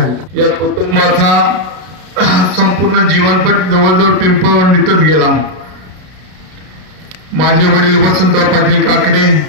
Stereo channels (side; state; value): left; late; 33 ms